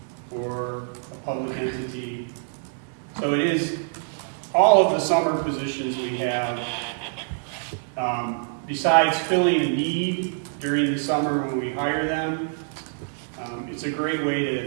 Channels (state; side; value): silent; left; digital silence